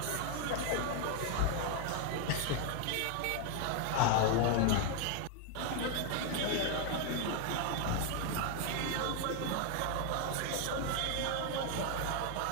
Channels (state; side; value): different; both; correlation 0.00